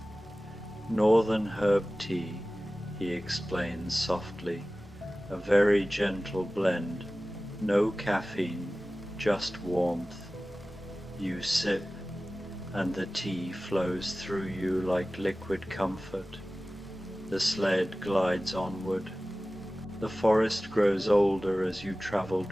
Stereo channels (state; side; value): normal; both; correlation 0.97